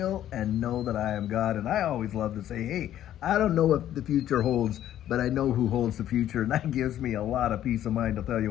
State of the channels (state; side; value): quieter; right; 11.8 dB